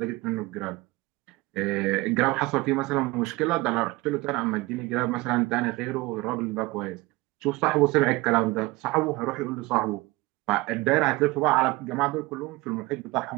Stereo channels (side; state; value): left; quieter; 21.8 dB